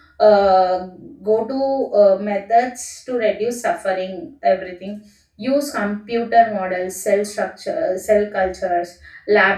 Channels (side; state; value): both; identical; correlation 1.00